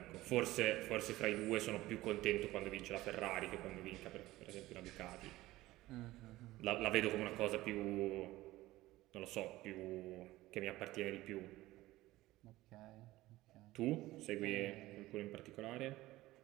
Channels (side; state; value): left; quieter; 17.4 dB